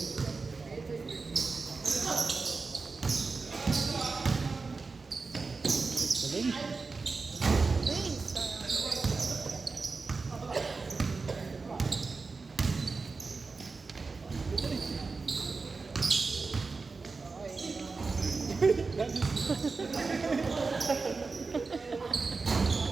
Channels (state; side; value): quieter; left; 4.2 dB